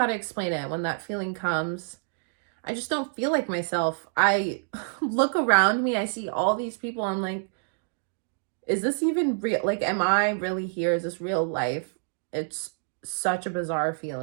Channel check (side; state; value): left; silent; digital silence